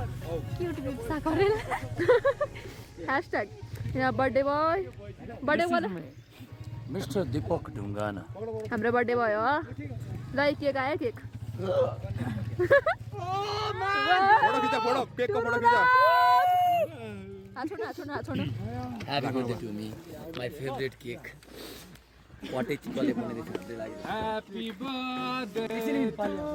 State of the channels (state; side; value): identical; both; correlation 1.00